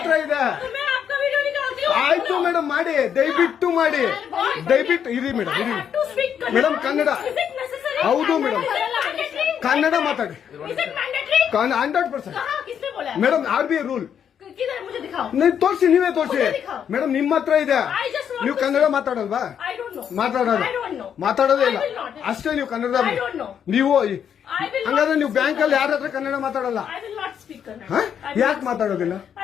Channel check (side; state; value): right; quieter; 8.4 dB